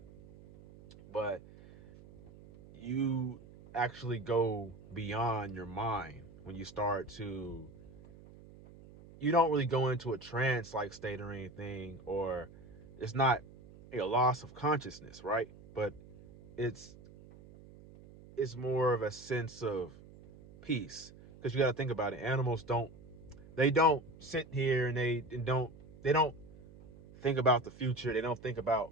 but you actually go beyond your mind when you start to, you don't really go into a trance like state or anything, or it's not a loss of consciousness, right? But it's more of a sense of peace. Because you got to think about it. Animals don't sit here and they don't think about the future. They don't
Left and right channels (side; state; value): right; noise; hum, 20 dB below the sound